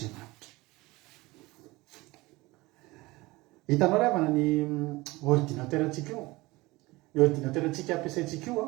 Hitanao ry havana ny ordinateur antsika io. Ny ordinateur antsika ampiasaintsika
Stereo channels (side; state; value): left; quieter; 21.3 dB